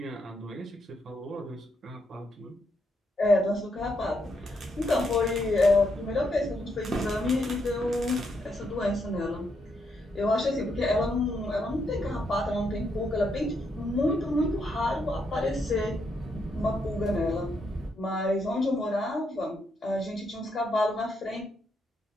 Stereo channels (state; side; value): normal; both; correlation 0.78